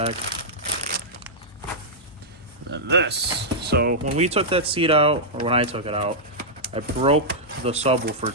And then this. So when we took that seat out, or when I took it out, I broke the subwoofer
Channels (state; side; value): normal; both; correlation -0.09